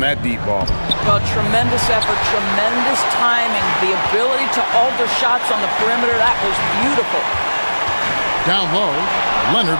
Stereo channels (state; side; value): inverted; both; correlation -1.00